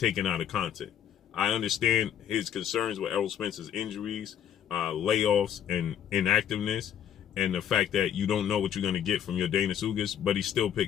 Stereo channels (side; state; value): right; quieter; 9.7 dB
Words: out of context. I understand his concerns with Errol Spence's injuries, layoffs, and inactiveness, and the fact that you don't know what you're going to get from Yordenis Ugas, but he still